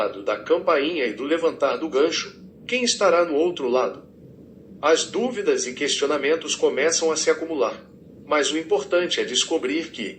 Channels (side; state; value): both; identical; correlation 1.00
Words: da campainha e do levantar do gancho, quem estará no outro lado? As dúvidas e questionamentos começam a se acumular, mas o importante é descobrir